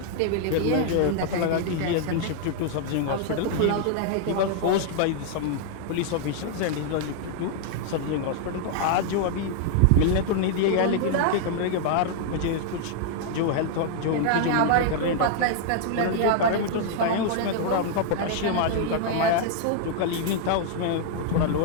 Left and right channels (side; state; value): both; different; correlation 0.00